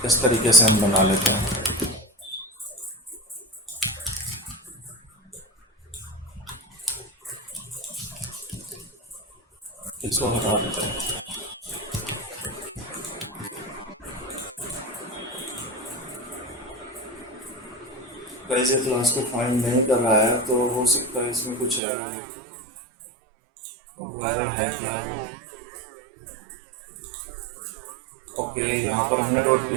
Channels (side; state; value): left; drops out; at 21.8 s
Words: इस तरीके से हम बना लेते हैं। इसको हटा देते हैं। कैसे क्लास को फाइंड नहीं कर रहा है, तो हो सकता है इसमें कुछ एरर है। और वो एरर है क्या वो? ओके, यहाँ पर हमने